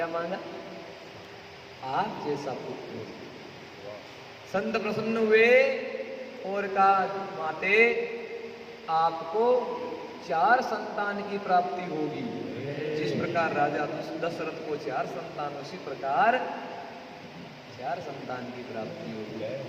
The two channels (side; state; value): both; identical; correlation 1.00